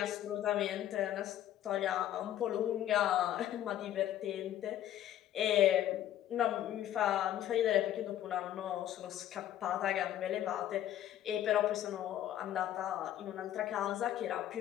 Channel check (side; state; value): right; quieter; 12.0 dB